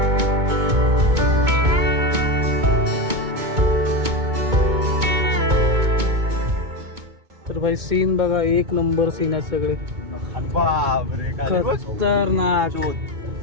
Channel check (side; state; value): left; late; 2.2 ms